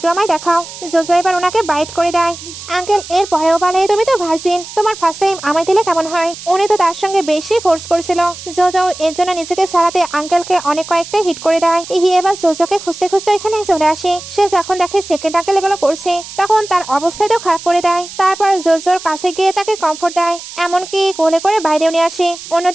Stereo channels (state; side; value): noise; right; hiss, 13 dB below the sound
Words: আমায় দেখাও। জোজো এবার ওনাকে বাইট করে দেয়। আঙ্কেল এর পরেও বলে তুমি তো ভার্জিন, তোমার ফার্স্ট টাইম আমায় দিলে কেমন হয়? উনি তো তার সঙ্গে বেশি ফোর্স করছিল। জোজো এর জন্য নিজেকে সারাতে আঙ্কেলকে অনেক কয়েকটা হিট করে দেয়। ইহি এবার জোজোকে খুঁজতে খুঁজতে এখানে চলে আসে। সে যখন দেখে সেকেন্ড আঙ্কেল এগুলো করছে তখন তার অবস্থাটাও খারাপ করে দেয়। তারপর জোজোর কাছে গিয়ে তাকে কমফোর্ট দেয়, এমনকি কোলে করে বাইরেও নিয়ে আসে।